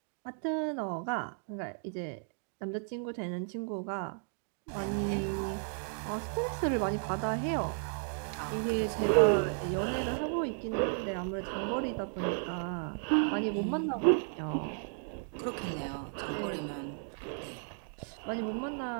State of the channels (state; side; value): silent; left; 55 dB below the other